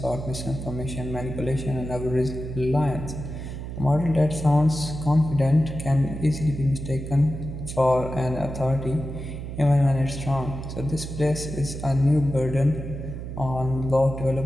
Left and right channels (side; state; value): right; noise; hum, 8 dB below the sound